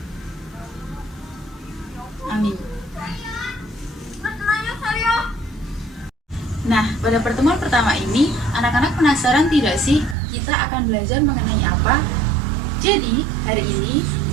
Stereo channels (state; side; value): drops out; left; at 10.2 s